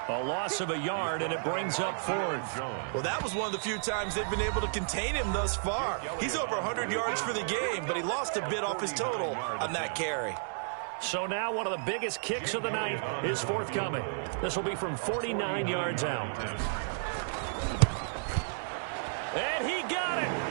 A loss of a yard, and it brings up fourth. Well, that was one of the few times they've been able to contain him thus far. He's over 100 yards for the game, but he lost a bit off his total on that carry. So now one of the biggest kicks of the night is forthcoming. This will be from 49 yards out. And he got it.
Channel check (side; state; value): left; silent; 56 dB below the other